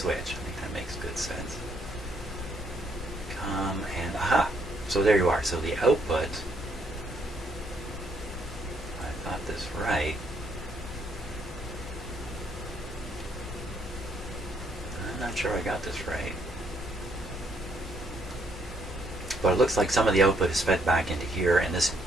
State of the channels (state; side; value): normal; both; correlation 0.71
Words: I think that makes good sense. Come and aha! So there you are. So the output, I got this right. I'm not sure I got this right. But it looks like some of the output is fed back into here, and this